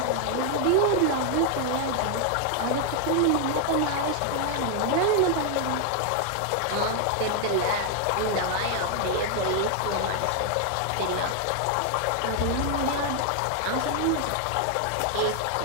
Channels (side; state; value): both; different; correlation 0.00